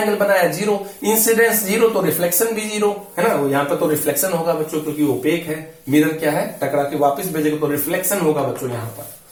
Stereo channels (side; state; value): both; identical; correlation 1.00